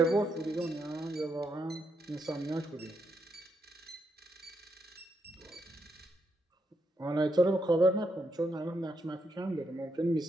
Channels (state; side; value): normal; both; correlation 0.80